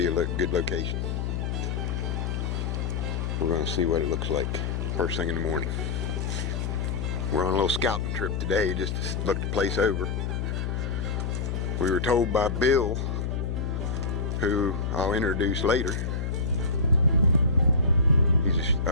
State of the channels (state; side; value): noise; left; hum, 1 dB below the sound